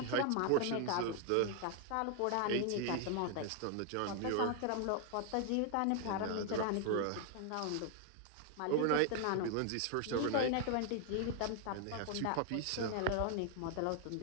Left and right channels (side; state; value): both; different; correlation 0.00